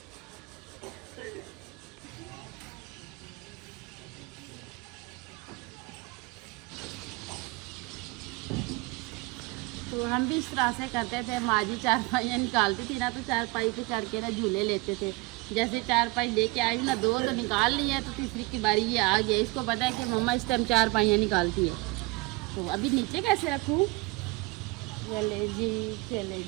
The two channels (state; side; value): quieter; left; 24.4 dB